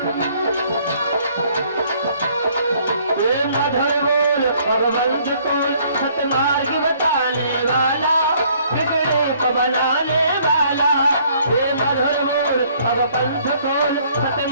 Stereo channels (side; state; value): both; inverted; correlation -0.62